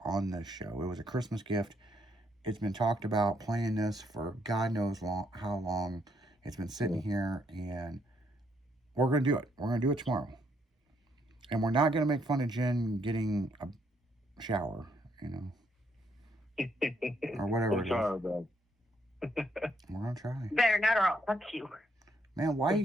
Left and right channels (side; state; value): both; normal; correlation 0.73